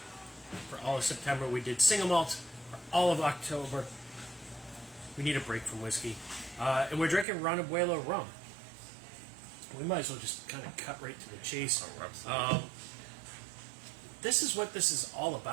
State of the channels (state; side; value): drops out; left; at 7.2 s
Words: for all of September. We did single malt for all of October. We need a break from whiskey, and we're drinking Ron Abuelo Rum. We might as well just kind of cut right to the chase. This is what this is all